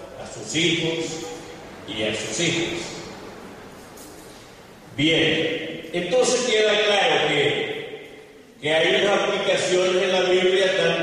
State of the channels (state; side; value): identical; both; correlation 1.00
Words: a sus hijos y a sus hijas. Bien, entonces queda claro que hay unas aplicaciones en la Biblia